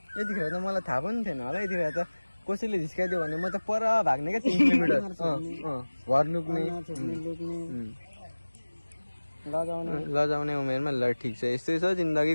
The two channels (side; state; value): both; inverted; correlation -1.00